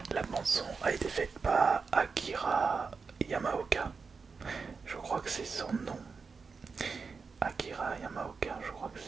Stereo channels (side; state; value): left; quieter; 5.0 dB